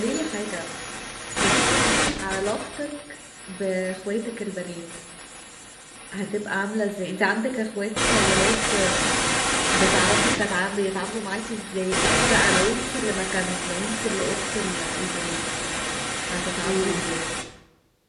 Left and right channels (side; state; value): both; identical; correlation 1.00